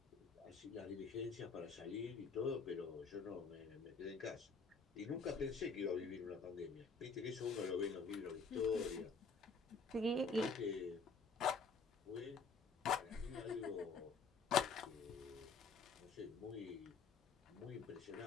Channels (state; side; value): quieter; right; 4.6 dB